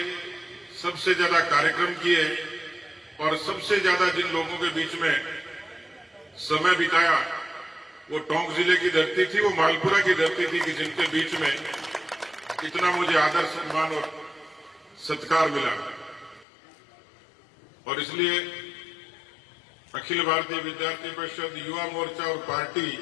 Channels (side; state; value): right; drops out; at 16.4 s